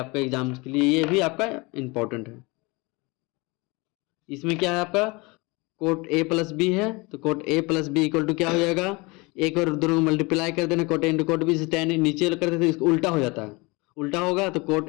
एग्जाम के लिए ये भी आपका इंपॉर्टेंट है। इसमें क्या है आपका, कोट ए प्लस बी है, तो cot A plus B equal to क्या हो जाएगा, एक बार दोनों को मल्टीप्लाई कर देना, cot A into cot B से टेन नीचे कर देते इसको उल्टा हो जाता है, उल्टा होगा तो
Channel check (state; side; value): quieter; right; 25.8 dB